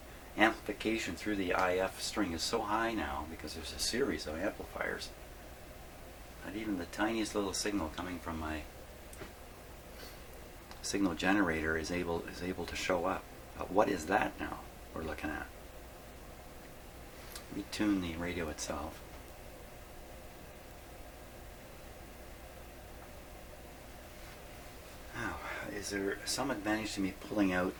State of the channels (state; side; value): identical; both; correlation 1.00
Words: amplification through the IF string is so high now because there's a series of amplifiers that even the tiniest little signal coming from my signal generator is able to show up. But what is that now we're looking at? Let me tune the radio itself. Now, is there some advantage to me pulling out